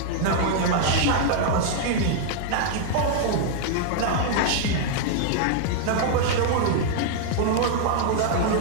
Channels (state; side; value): different; both; correlation -0.01